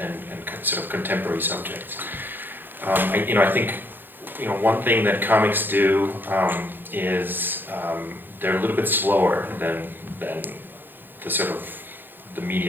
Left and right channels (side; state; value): left; late; 0.095 ms